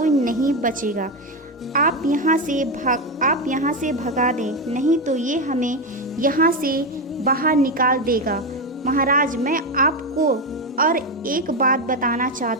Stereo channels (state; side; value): normal; both; correlation 0.11